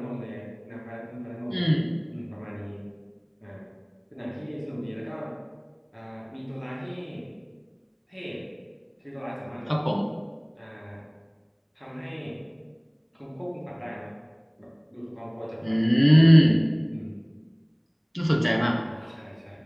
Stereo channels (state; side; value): identical; both; correlation 1.00